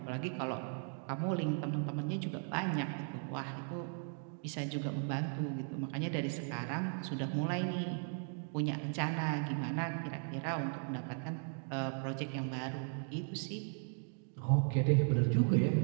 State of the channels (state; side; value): silent; left; 53 dB below the other